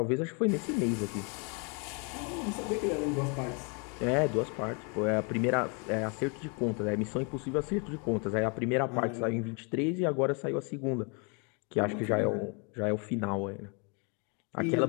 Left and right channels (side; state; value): right; quieter; 35.0 dB